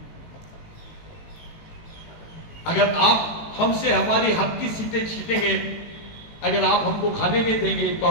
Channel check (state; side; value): late; right; 18 ms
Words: अगर आप हमसे हमारी हक की सीटें छीटेंगे, अगर आप हमको खाने नहीं देंगे, तो